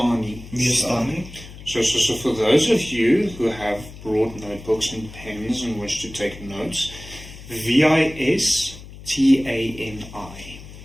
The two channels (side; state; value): left; noise; hum, 16 dB below the sound